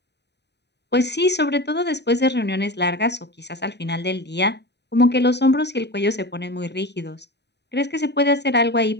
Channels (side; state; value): right; late; 0.50 ms